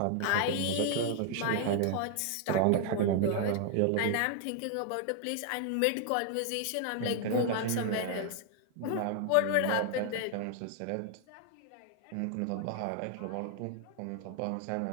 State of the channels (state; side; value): different; both; correlation 0.00